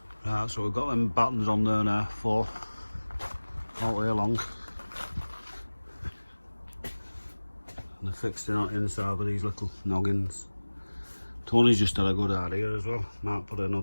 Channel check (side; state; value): both; inverted; correlation -1.00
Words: Right, so we've got them battens on there now, 4, all the way along. And they're fixed in inside with these little noggins. Tony's just had a good idea as well. Might put